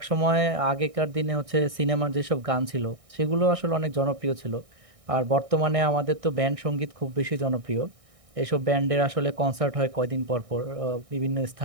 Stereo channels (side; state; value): left; late; 1.6 ms